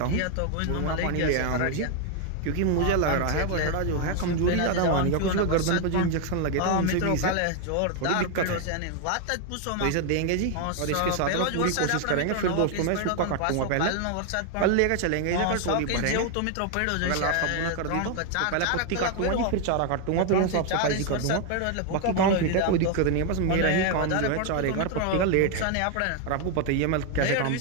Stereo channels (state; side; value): different; both; correlation 0.01